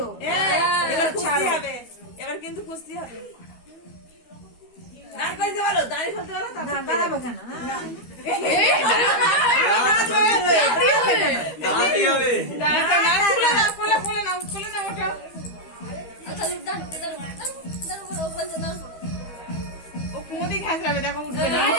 এবার কুস্তি হবে, এবার কিন্তু কুস্তি হবে। দাঁড় করতে বলো, দাঁড়িয়ে ফেলতে বলো, না দাঁড়াবে কেন? দাঁড়াতেই হবে খুলে নাও ওটা। ও কুমোদি ঘাসরাবে, দেখো উঠবে না।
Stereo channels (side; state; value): right; late; 12 ms